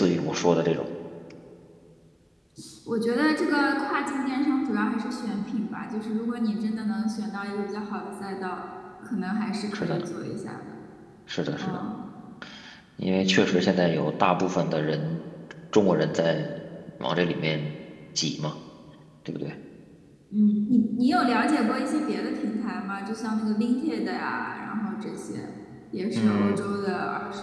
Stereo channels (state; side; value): identical; both; correlation 1.00